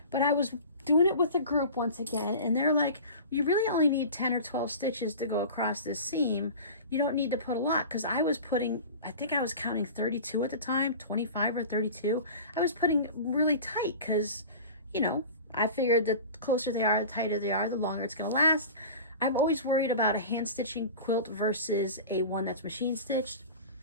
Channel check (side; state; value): both; inverted; correlation -0.35